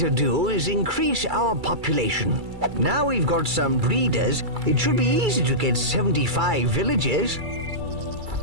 do is increase our population. Now we've got some breeders, it should be easy to get 75 villagers.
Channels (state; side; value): late; left; 2.3 ms